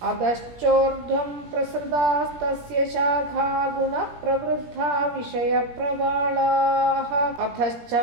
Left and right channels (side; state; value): left; late; 17 ms